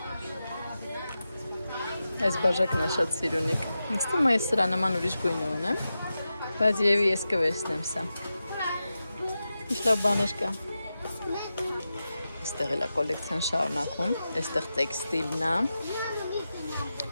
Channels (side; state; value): both; inverted; correlation -0.92